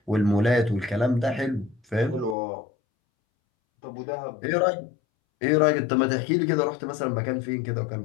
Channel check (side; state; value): right; drops out; at 2.4 s